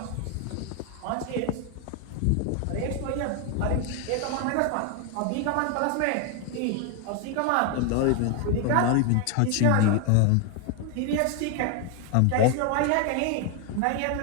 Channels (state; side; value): different; both; correlation 0.01